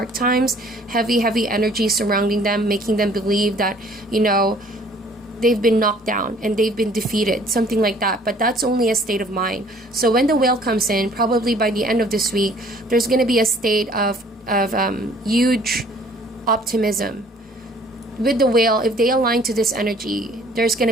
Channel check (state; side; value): normal; both; correlation 0.56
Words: times, heavy energy surrounding them, making them believe that, they've been knocked down and they've been defeated, something like that. But that's only a state of mind. So when the Whale comes in, probably by the end of this week, there's going to be a state of huge optimism. With the Whale, if they align to this energy, there's going